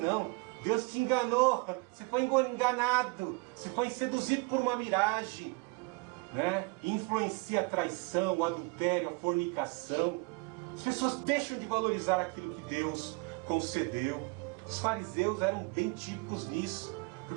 Deus te enganou, você foi enganado, você foi seduzido por uma miragem, né? Influencia a traição, o adultério, a fornicação. As pessoas deixam de valorizar aquilo que Deus concedeu. Os fariseus eram bem típicos nisso,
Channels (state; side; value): quieter; left; 29.8 dB